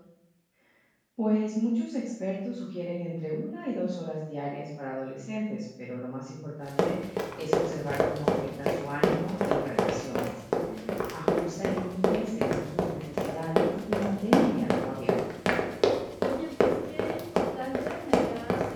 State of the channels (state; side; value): identical; both; correlation 1.00